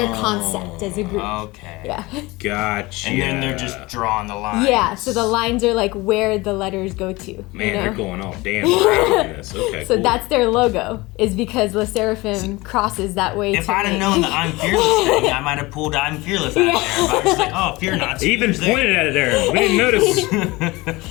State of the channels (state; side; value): quieter; right; 21.9 dB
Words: concept as a group. Okay. Yeah. Gotcha. And then they're just drawing the lines. Yeah, so the lines are like where the letters go to. Man, you know? they're going all damn crazy in this. Okay. So cool. that's their logo, is because Le Seraphim crosses that way. If to I'd have make- known the I'm fearless thing, I might have pulled I'm fearless out of there. But I was just like, oh, fear not. He even pointed at it there. We didn't notice.